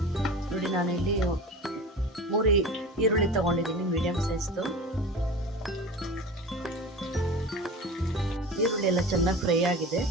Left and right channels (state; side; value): normal; both; correlation 0.34